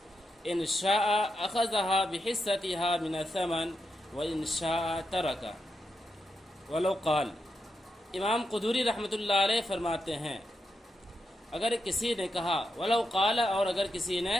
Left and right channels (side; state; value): both; normal; correlation 0.85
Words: إن شاء أخذها بحصتها من الثمن وإن شاء ترك. ولو قال، امام قدوری رحمۃ اللہ علیہ فرماتے ہیں اگر کسی نے کہا، ولو قال، اور اگر کسی نے